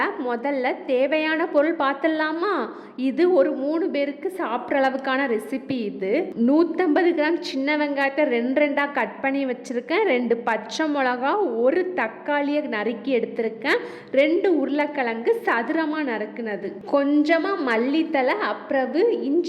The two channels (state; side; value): identical; both; correlation 1.00